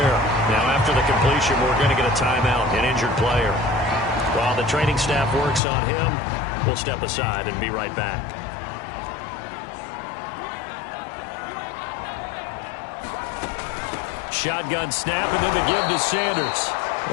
Now after the completion, we're going to get a timeout, an injured player. While the training staff works on him, we'll step aside and be right back. Shotgun snap, and then the give to Sanders.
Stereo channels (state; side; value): drops out; right; at 5.6 s